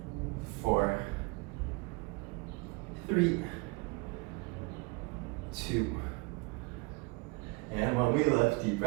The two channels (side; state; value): left; quieter; 26.9 dB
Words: 4, 3, 2, and when we lift, deep